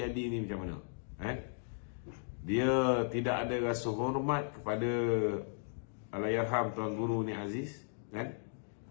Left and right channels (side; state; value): right; silent; digital silence